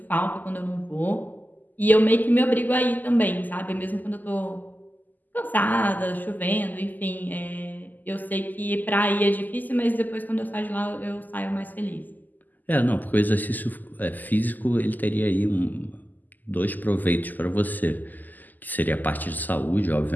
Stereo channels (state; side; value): late; right; 0.084 ms